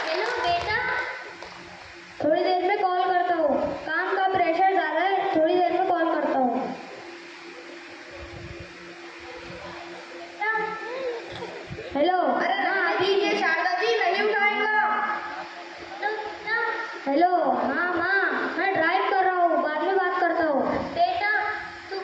हेलो बेटा, थोड़ी देर में कॉल करता हूँ, काम का प्रेशर ज़्यादा है, थोड़ी देर में कॉल करता हूँ। हेलो। अरे हाँ दीजिए शारदा जी, नहीं उठाएगा। हेलो। हाँ माँ, मैं ड्राइव कर रहा हूँ, बाद में बात करता हूँ। बेटा, तू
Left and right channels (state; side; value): identical; both; correlation 1.00